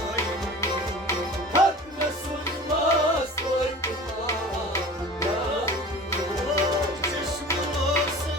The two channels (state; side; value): normal; both; correlation 0.39